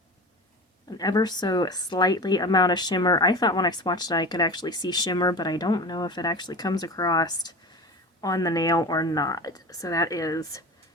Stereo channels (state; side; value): normal; both; correlation 0.32